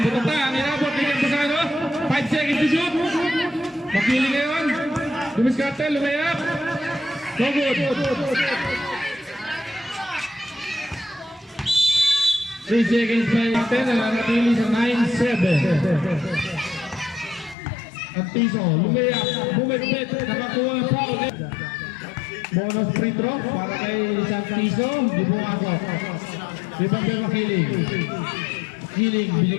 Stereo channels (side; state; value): right; drops out; at 17.6 s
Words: Butok na. Ang inabot ni Campusano. 5 seconds to shoot. Makiling ngayon. Dumiskarte. Lumayak. No good. 3 seconds pa natin. Nanatili sa 9-7. Santiso, lumayak, bumipit, nakakuha ng foul. Bonus free throw para kay Santiso, di pumasok. Ibang kay Makiling. Makiling,